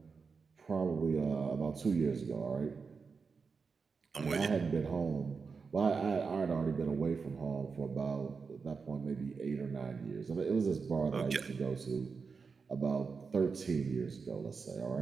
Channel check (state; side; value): quieter; left; 5.1 dB